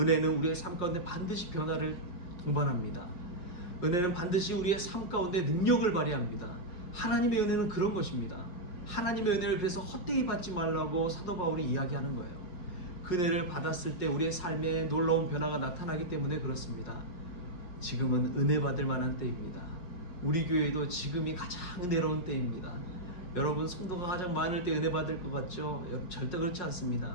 우리의 삶 가운데 반드시 변화를 동반합니다. 은혜는 반드시 우리의 삶 가운데 능력을 발휘합니다. 하나님의 은혜는 그런 것입니다. 하나님의 은혜를 그래서 헛되이 받지 말라고 사도 바울이 이야기하는 거예요. 그 은혜를 받았을 때 우리의 삶에 놀라운 변화가 나타나기 때문에 그렇습니다. 지금은 은혜 받을 만한 때입니다. 우리 교회도 지금이 가장 은혜로운 때입니다. 여러분, 성도가 가장 많을 때 은혜 받을 것 같죠? 여러분, 절대 그렇지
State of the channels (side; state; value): right; late; 5.5 ms